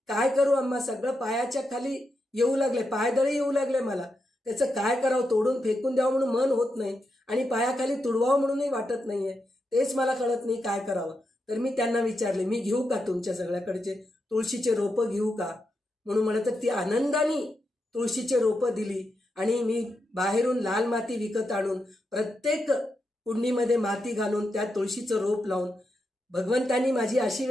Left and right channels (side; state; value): both; normal; correlation 0.85